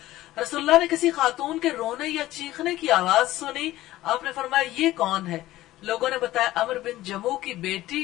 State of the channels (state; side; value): quieter; right; 15.8 dB